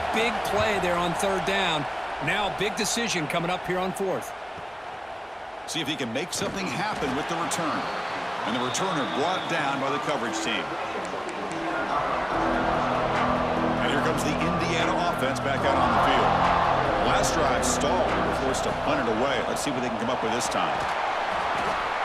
big play there on 3rd down. Now, big decision coming up here on 4th. See if he can make something happen with the return. And the returner brought down by the coverage team. And here comes the Indiana offense back out on the field. Last drive stalled. They were forced to punt it away. Let's see what they can come up with this time.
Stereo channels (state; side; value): identical; both; correlation 1.00